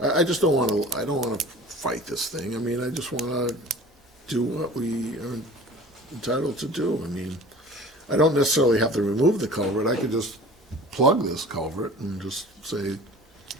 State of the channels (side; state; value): both; normal; correlation 0.43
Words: I just don't wanna, I don't wanna fight this thing. I mean, I just wanna do what we are entitled to do. I mean, I don't necessarily have to remove the culvert. I could just plug this culvert and just say,